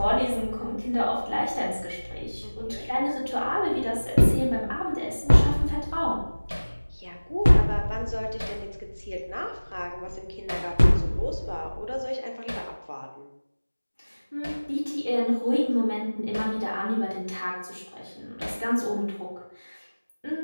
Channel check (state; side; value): inverted; both; correlation -1.00